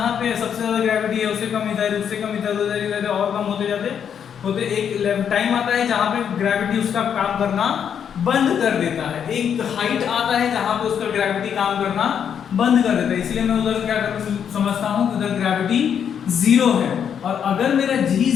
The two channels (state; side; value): quieter; right; 8.1 dB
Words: पे सबसे ज्यादा ग्रेविटी है, उससे कम इधर, उससे कम इधर, उधर और कम होते जाते होते एक टाइम आता है जहाँ पे ग्रेविटी उसका काम करना बंद कर देता है, एक हाइट आता है जहाँ पे उसका ग्रेविटी काम करना बंद कर देता है। इसलिए मैं उधर क्या समझता हूँ, उधर ग्रेविटी जीरो है। और अगर मेरा जी